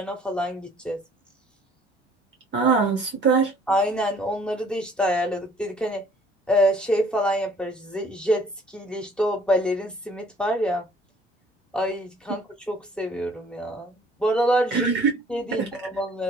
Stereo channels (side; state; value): both; normal; correlation 0.57